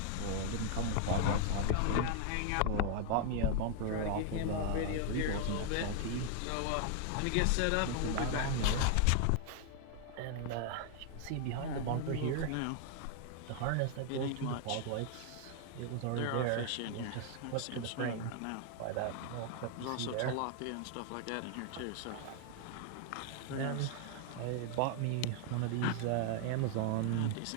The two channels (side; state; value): both; different; correlation 0.00